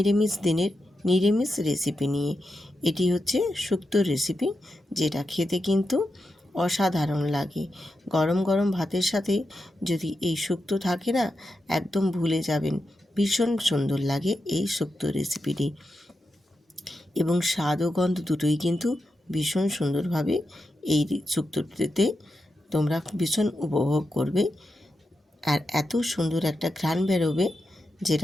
দিনের নিরামিষ রেসিপি নিয়ে। এটি হচ্ছে শুক্তোর রেসিপি, যেটা খেতে কিন্তু অসাধারণ লাগে। গরম গরম ভাতের সাথে যদি এই শুক্তো থাকে না, একদম ভুলে যাবেন। ভীষণ সুন্দর লাগে এই শুক্তো রেসিপিটি, এবং স্বাদ ও গন্ধ দুটোই কিন্তু ভীষণ সুন্দরভাবে এই শুক্তোতে তোমরা ভীষণ উপভোগ করবে। আর এত সুন্দর একটা ঘ্রাণ বেরোবে,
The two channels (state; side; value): normal; both; correlation 0.88